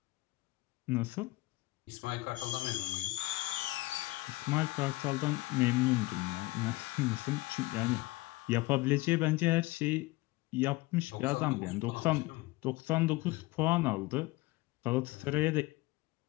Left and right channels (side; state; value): right; quieter; 20.6 dB